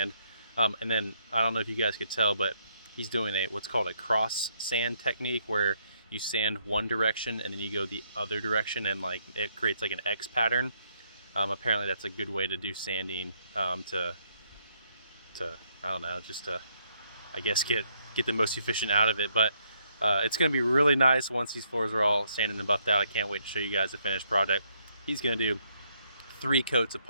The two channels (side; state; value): both; inverted; correlation -0.72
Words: And then I don't know if you guys could tell, but he's doing what's called a cross sand technique, where you sand one direction and then you go the other direction, and like it creates like an X pattern. Apparently that's a good way to do sanding, to I don't know, just to, I guess, get the most efficient out of it. But it's going to be really nice once these floors are all sanded and buffed out. I can't wait to show you guys the finished product. He's going to do 3 coats of